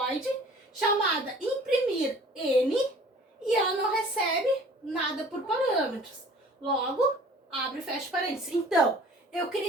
chamada imprimir N, e ela não recebe nada por parâmetros. Logo, abre e fecha parênteses. Então, eu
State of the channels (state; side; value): normal; both; correlation 0.49